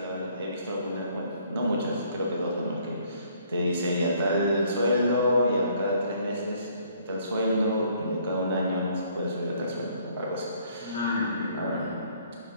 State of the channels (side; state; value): both; inverted; correlation -0.62